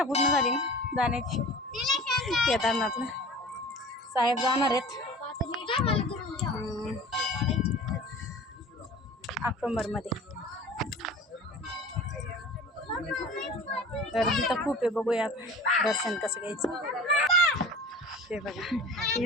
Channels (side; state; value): both; normal; correlation 0.39